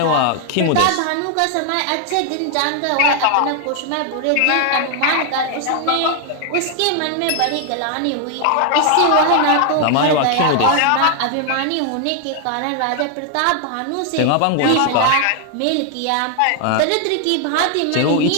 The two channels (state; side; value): different; both; correlation 0.00